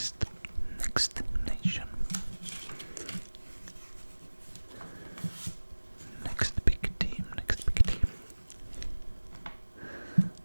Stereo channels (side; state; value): both; inverted; correlation -1.00